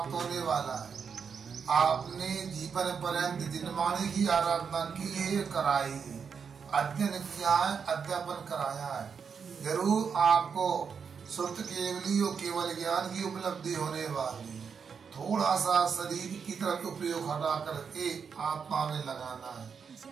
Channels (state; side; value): quieter; left; 6.3 dB